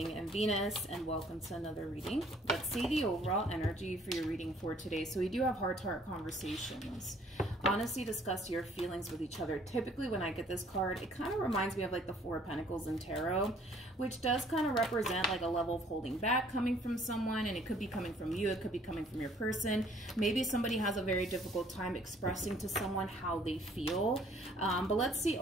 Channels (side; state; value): both; normal; correlation 0.59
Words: and Venus, and welcome to another reading. Let's see the overall energy for your reading for today. So we do have heart-to-heart conversations. Honestly, discuss your feelings with each other. Typically when I get this card, it kind of reminds me of like the Four of Pentacles in Tarot, which does kind of represent like a level of holding back coming from someone, and it could be coming from you, it could be coming from your person. Maybe somebody has a very difficult time expressing to someone how they feel. But let's see